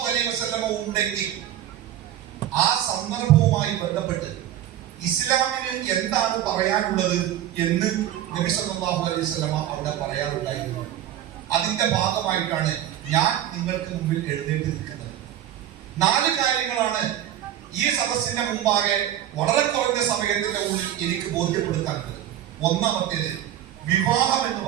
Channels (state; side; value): quieter; left; 11.8 dB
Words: അലൈഹി വസല്ലമ ഉണ്ടെങ്കിൽ ആ സന്ദർഭവുമായി ബന്ധപ്പെട്ട് ഇസ്ലാമിന് എന്താണ് പറയാനുള്ളത് എന്ന് നബി സല്ലല്ലാഹു അലൈഹി വസല്ലമ അവിടെ പറയാറുണ്ടായിരുന്നു. അതിന്റെ ഭാഗമായിട്ടാണ് ഞാൻ നിങ്ങൾക്ക് മുമ്പിൽ എഴുന്നേറ്റ് നിൽക്കുന്നത്. 4 കാര്യങ്ങളാണ് ഈ സദസ്സിന്റെ മുമ്പാകെ വളരെ കുറഞ്ഞ സമയത്തിന്റെ ഉള്ളിൽ എനിക്ക് ബോധ്യപ്പെടുത്താനുള്ളത്. ഒന്നാമത്തേത്, വിവാഹം എന്ന്